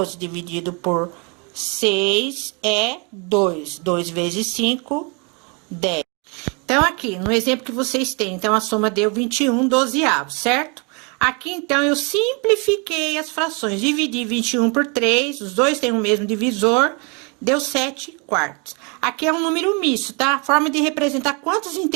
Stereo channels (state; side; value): quieter; left; 33.0 dB